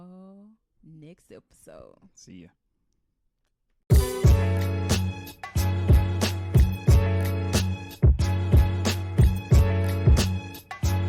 next episode. See ya.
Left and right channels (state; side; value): identical; both; correlation 1.00